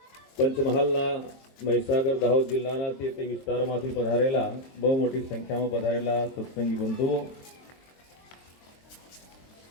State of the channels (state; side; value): late; right; 23 ms